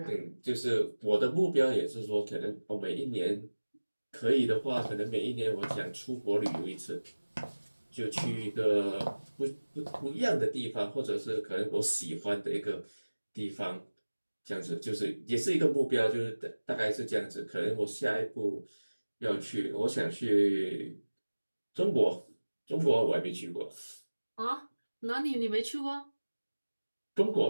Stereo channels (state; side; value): inverted; both; correlation -1.00